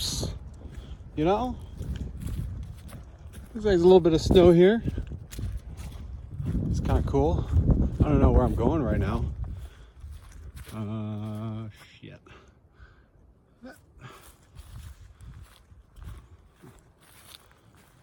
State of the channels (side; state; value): both; identical; correlation 1.00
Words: you know? Looks like there's a little bit of snow here. It's kind of cool. I don't know where I'm going right now. Shit.